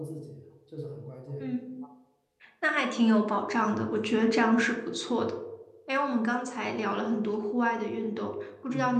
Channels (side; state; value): both; identical; correlation 1.00